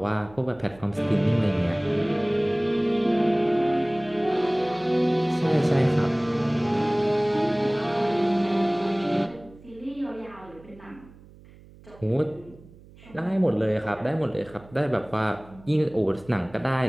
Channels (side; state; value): right; noise; hum, 23 dB below the sound